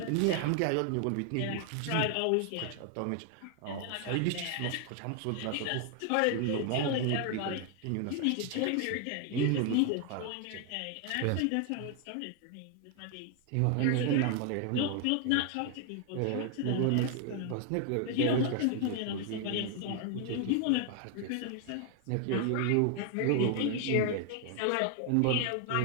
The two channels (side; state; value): both; different; correlation 0.00